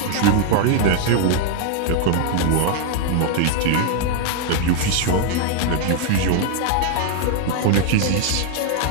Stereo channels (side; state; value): both; different; correlation 0.00